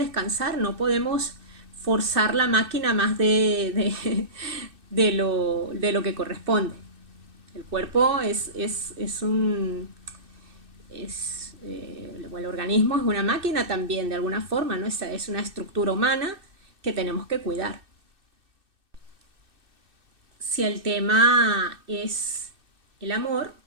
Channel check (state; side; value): late; left; 2.6 ms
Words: no podemos forzar la máquina más de lo que corresponde. El cuerpo es o el organismo es una máquina también, de alguna forma, ¿no? Es una estructura humana que tenemos que cuidar. Si el tema es el amor,